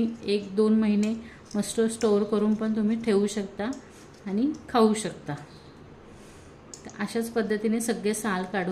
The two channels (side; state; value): both; identical; correlation 1.00